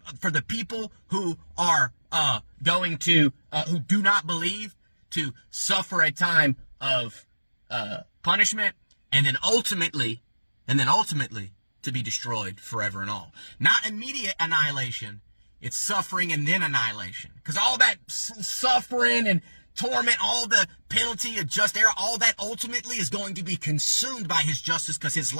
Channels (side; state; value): both; inverted; correlation -1.00